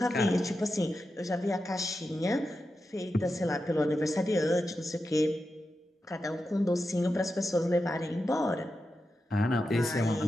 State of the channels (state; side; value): normal; both; correlation 0.90